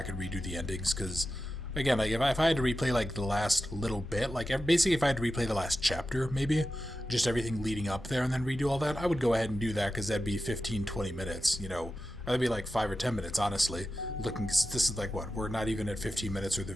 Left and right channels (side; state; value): both; normal; correlation 0.92